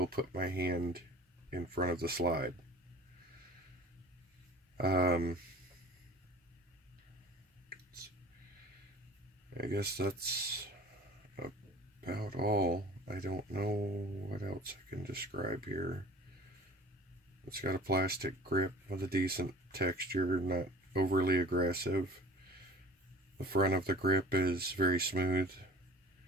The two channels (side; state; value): both; normal; correlation 0.43